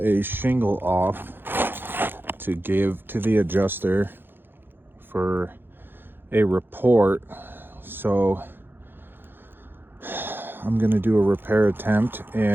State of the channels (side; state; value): left; late; 0.10 ms